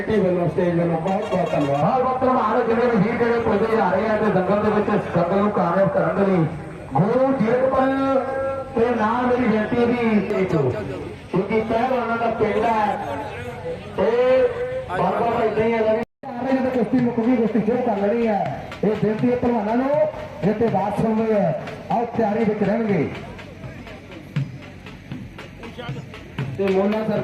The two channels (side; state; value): both; identical; correlation 1.00